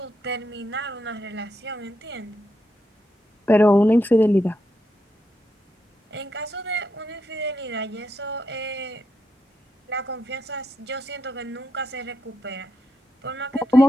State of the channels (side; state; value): both; normal; correlation 0.82